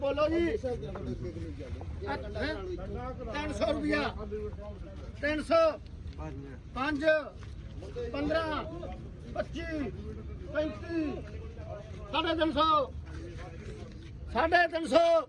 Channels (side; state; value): both; identical; correlation 1.00